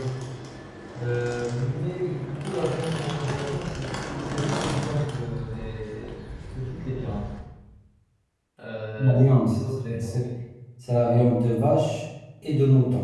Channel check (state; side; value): identical; both; correlation 1.00